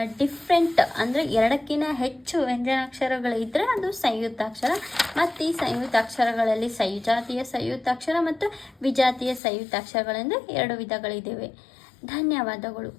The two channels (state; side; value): drops out; right; at 9.4 s